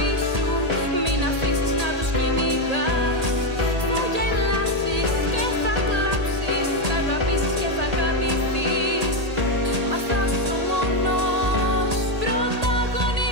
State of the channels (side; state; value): left; late; 1.8 ms